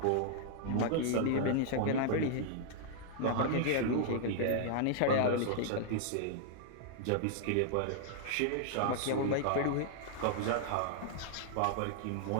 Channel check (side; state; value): both; different; correlation -0.01